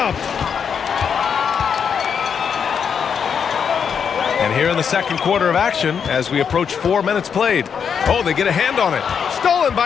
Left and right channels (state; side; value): quieter; right; 7.0 dB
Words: And here in the second quarter of action, as we approach 4 minutes played. Oh, they get a hand on it. Stolen